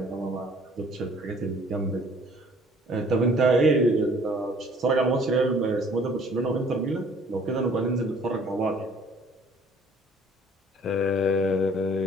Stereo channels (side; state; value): both; normal; correlation 0.55